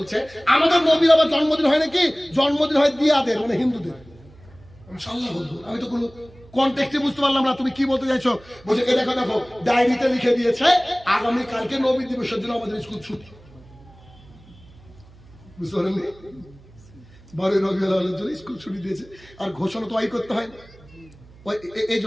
আমাদের নবীর আবার জন্মদিন হয় নাকি? জন্মদিন হয় দিয়াদের, মানে হিন্দুদের। আমি তো কোনো কনটেক্সটে বুঝতে পারলাম না তুমি কি বলতে চাইছো। বলছে এ দেখো ডায়েরিতে লিখে দিয়েছে আগামী কালকে নবী দিবসের জন্য আমাদের স্কুল ছুটি। বুঝতে পারেননি? 12 রবিউল আউয়ালের জন্য স্কুল ছুটি দিয়েছে, আর ঘোষণা তো করতে হয়। এই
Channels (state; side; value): noise; right; hum, 24 dB below the sound